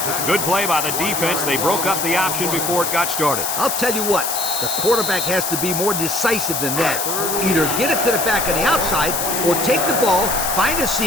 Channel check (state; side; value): noise; left; hiss, 2 dB below the sound